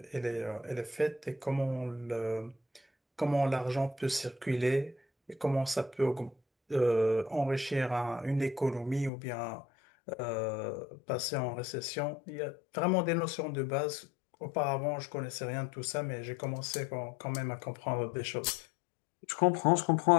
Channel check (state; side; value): drops out; right; at 9.1 s